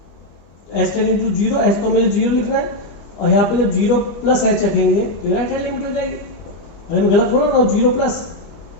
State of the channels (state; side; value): late; right; 25 ms